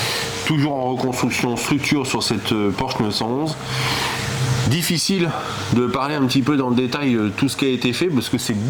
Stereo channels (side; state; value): both; identical; correlation 1.00